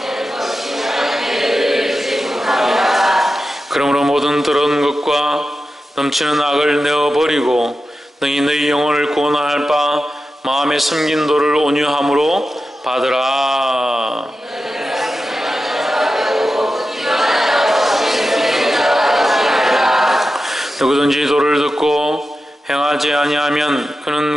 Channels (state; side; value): normal; both; correlation 0.92